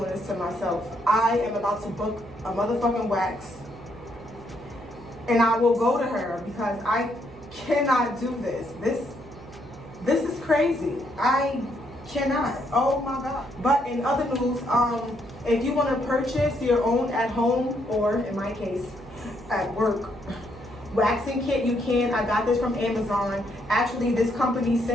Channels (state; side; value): noise; right; hum, 18 dB below the sound